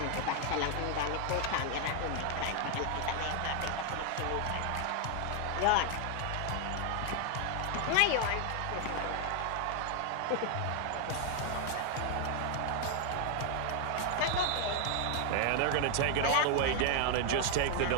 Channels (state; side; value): different; both; correlation 0.00